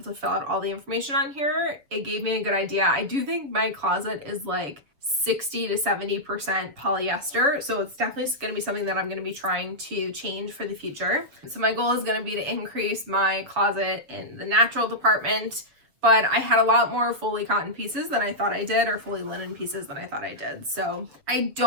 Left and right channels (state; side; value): late; left; 6.9 ms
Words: to fill out all the information on here, it gave me a good idea. I do think my closet is like 60 to 70% polyester, so it's definitely going to be something that I'm going to be trying to change for the future. So my goal is going to be to increase my closet in the natural department, but I had a lot more fully cotton pieces than I thought I did, or fully linen pieces than I thought I did. So I